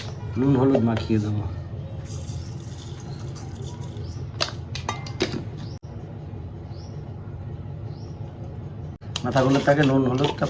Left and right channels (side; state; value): both; identical; correlation 1.00